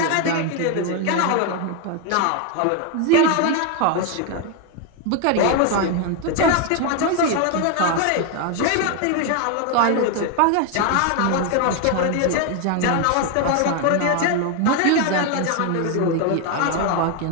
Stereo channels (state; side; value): different; both; correlation 0.01